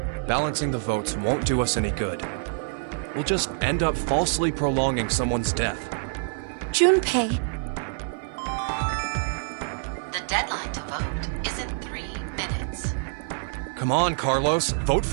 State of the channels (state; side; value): silent; left; 55 dB below the other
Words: Balancing the votes won't do us any good. We'll just end up falsely prolonging someone's death. Junpei. The deadline to vote is in 3 minutes. Come on, Carlos. Vote